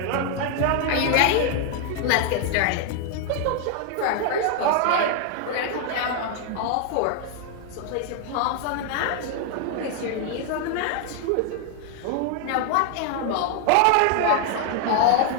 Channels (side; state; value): both; different; correlation 0.00